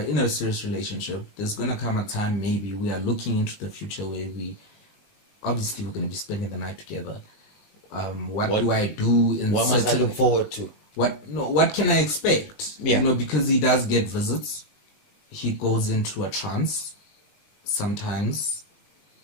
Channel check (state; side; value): late; right; 20 ms